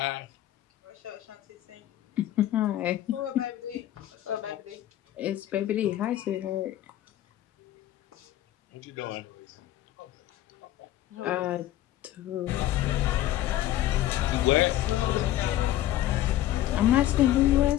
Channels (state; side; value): quieter; right; 13.6 dB